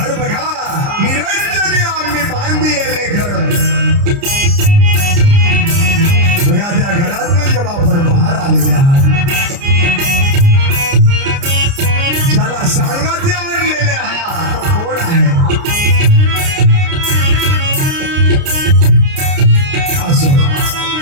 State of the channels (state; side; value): late; left; 29 ms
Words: बघा, निरंजनी आम्ही बांधिले घर. बघा त्या घरातून जेव्हा आपण बाहेर आलेले आहात, ज्याला सांगाते आणलेले आहात तो कोण आहे? असं